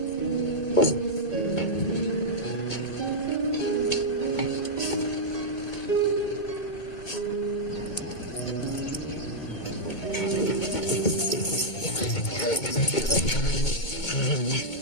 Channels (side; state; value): right; late; 2.2 ms